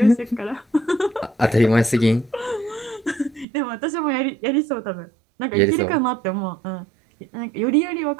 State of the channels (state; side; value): drops out; left; at 3.5 s